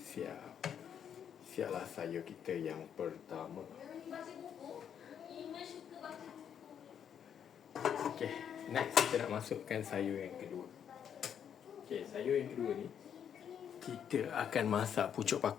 Siaplah sayur kita yang pertama. Okey, next kita nak masukkan sayur yang kedua. Okey, sayur yang kedua ni kita akan masak pucuk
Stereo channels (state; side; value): quieter; right; 8.5 dB